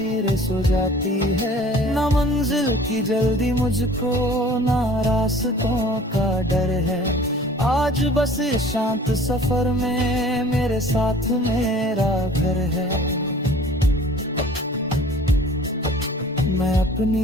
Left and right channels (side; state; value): both; normal; correlation 0.48